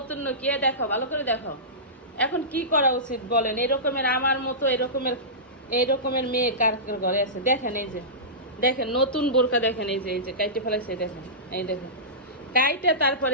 কে দেখো, ভালো করে দেখো। এখন কি করা উচিত বলেন? এরকমের আমার মতো এরকমের মেয়ে কার কার ঘরে আছে? দেখেন এই যে দেখেন নতুন বোরকা, দেখেন এই যে কাইটে ফেলাইছে, দেখেন এই দেখেন কাইটে,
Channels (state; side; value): normal; both; correlation -0.19